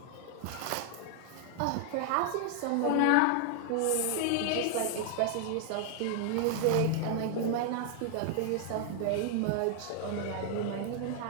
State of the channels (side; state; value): both; different; correlation 0.00